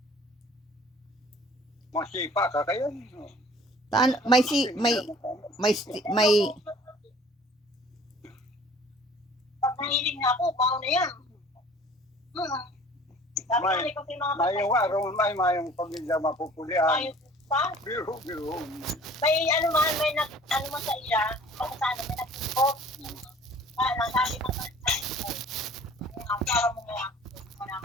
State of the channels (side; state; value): both; normal; correlation 0.49